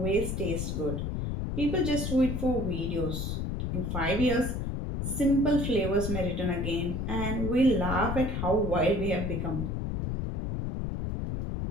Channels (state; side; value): noise; left; rumble, 2 dB below the sound